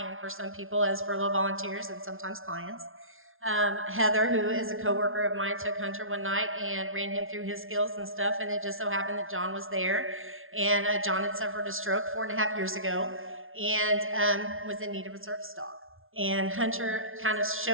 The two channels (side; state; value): left; late; 0.60 ms